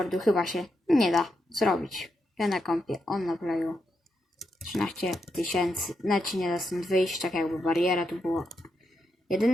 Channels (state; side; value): normal; both; correlation 0.83